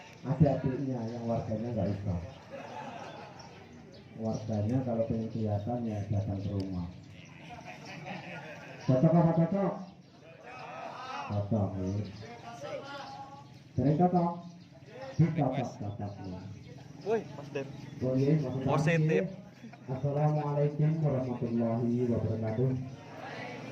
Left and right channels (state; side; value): identical; both; correlation 1.00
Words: Ada adiknya yang warganya nggak usah. Warganya kalau pengen kelihatan ya datang ke rumah. Cocok apa cocok? Cocok nih. Sering cocok? Cocok nih. Woi, Mas Den. Positif. Positif. Assalamualaikum warahmatullahi wabarakatuh.